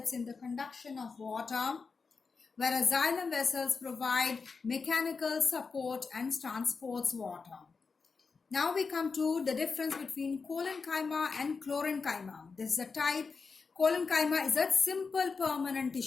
in the conduction of water, whereas xylem vessels provide mechanical support and transports water. Now we come to the difference between collenchyma and chlorenchyma. This is a type. Collenchyma is a simple permanent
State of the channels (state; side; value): quieter; right; 4.8 dB